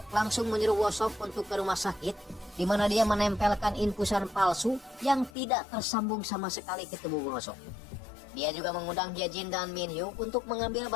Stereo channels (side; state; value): right; drops out; at 5.3 s